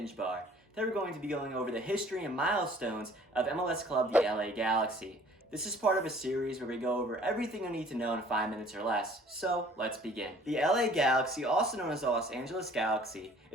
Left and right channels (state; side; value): normal; both; correlation 0.53